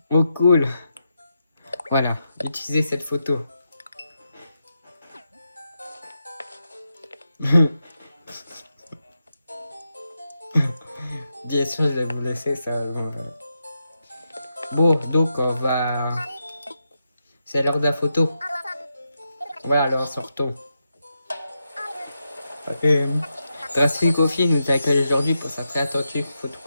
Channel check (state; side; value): inverted; both; correlation -0.86